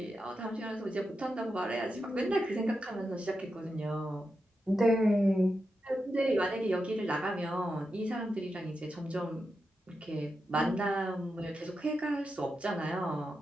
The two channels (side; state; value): both; normal; correlation 0.88